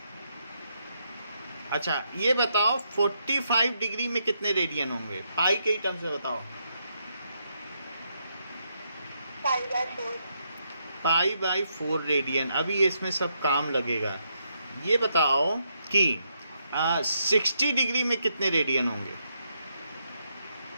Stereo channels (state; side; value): inverted; both; correlation -0.78